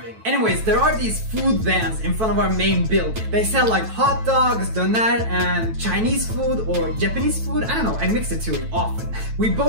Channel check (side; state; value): left; late; 9.1 ms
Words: Anyways, there are these food vans in front of our main building. They sell like hot dogs, doner, and Chinese food or Japanese food. I don't know, I mix the two often. We